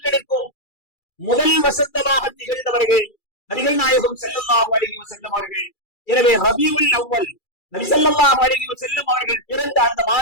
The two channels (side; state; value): right; late; 2.3 ms